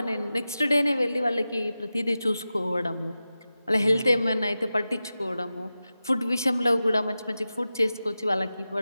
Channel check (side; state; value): both; inverted; correlation -0.93